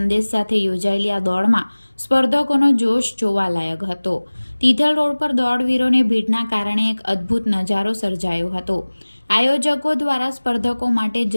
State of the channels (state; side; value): inverted; both; correlation -1.00